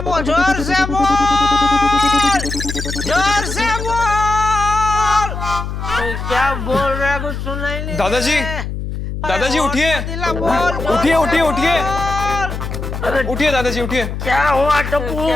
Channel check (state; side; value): noise; left; hum, 6 dB below the sound